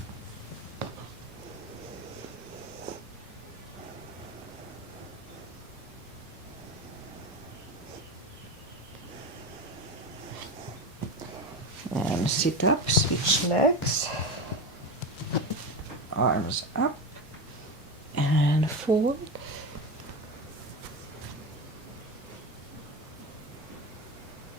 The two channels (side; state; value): both; normal; correlation 0.21